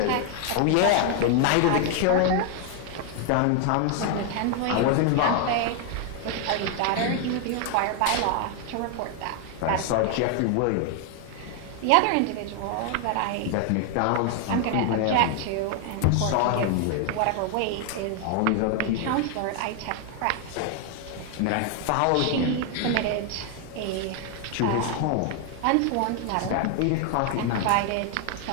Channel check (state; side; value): different; both; correlation 0.00